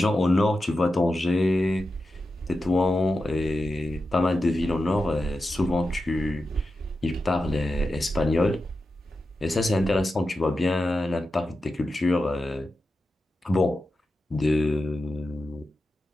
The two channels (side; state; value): both; normal; correlation 0.91